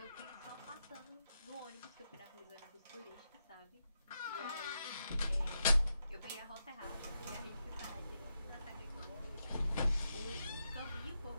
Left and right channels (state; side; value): inverted; both; correlation -0.84